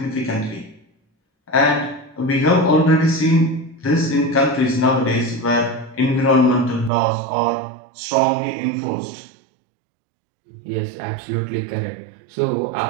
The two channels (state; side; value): drops out; left; at 6.9 s